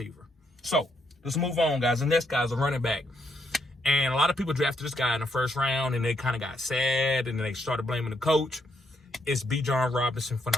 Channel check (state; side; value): normal; both; correlation 0.76